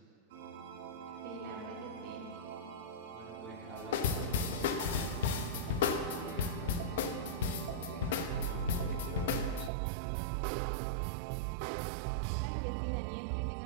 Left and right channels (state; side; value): drops out; left; at 9.7 s